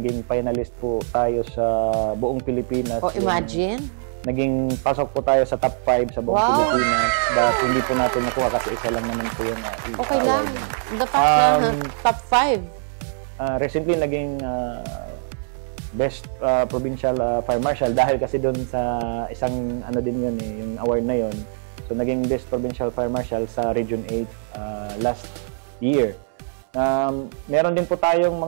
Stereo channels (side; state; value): left; silent; 64 dB below the other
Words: finalist po tayo sa buong Pilipinas. Imagine. Naging pasok po tayo sa top 5 sa buong Pilipinas, but hindi po natin nakuha kasi isa lang naman po yung Okay lang. award. The fact na top 5. Recently, naging best provincial fire marshal dahil kasi doon sa isang din yun yung award na yun. So naging best provincial fire marshal sa Region 8 last year. Meron din po tayong